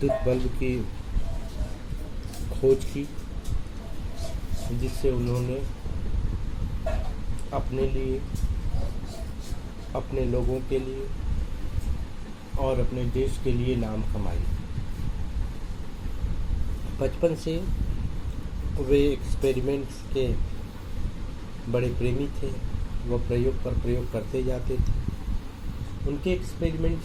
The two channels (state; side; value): identical; both; correlation 1.00